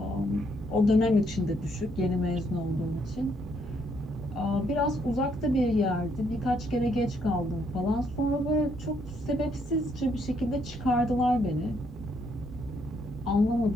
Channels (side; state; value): both; normal; correlation 0.72